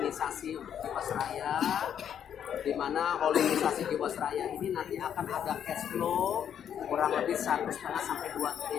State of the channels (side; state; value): right; quieter; 9.0 dB